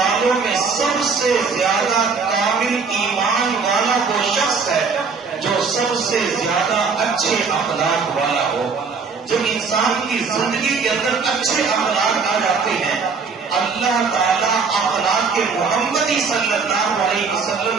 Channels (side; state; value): left; quieter; 5.1 dB